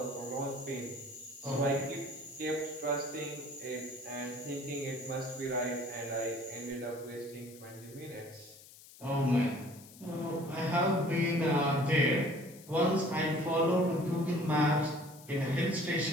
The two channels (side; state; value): left; noise; hiss, 20 dB below the sound